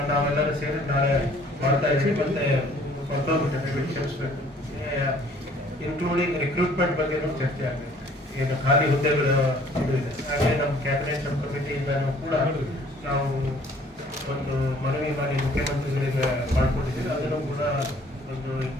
ನಾವೆಲ್ಲರೂ ಸೇರಿ ನಾಳೆ ಮಾಡ್ತಾ ಇದ್ದೀವಿ. ಮತ್ತೆ ಕ್ಷಮಿಸ್ಬೇಕು, ಇನ್ಕ್ಲೂಡಿಂಗ್ ರಿಕ್ರೂಟ್ಮೆಂಟ್ ಬಗ್ಗೆ ಚರ್ಚೆ ಆಗುತ್ತೆ. ಏನು ಖಾಲಿ ಹುದ್ದೆಗಳು ಇದೆ, ಹಾಗೆ ನಮ್ಮ ಕ್ಯಾಬಿನೆಟ್ ಸಬ್ ಕಮಿಟಿಯಿಂದನೂ ಕೂಡ ನಾವು ಒಂದು ಮನವಿ ಮಾಡಿ ಮುಖ್ಯಮಂತ್ರಿಗಳಿಗೆ ಮಾಡ್ಕೊಂಡಿದ್ದೀವಿ. ಅದನ್ನು ಕೂಡ ಒಂದು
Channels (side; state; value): both; normal; correlation 0.56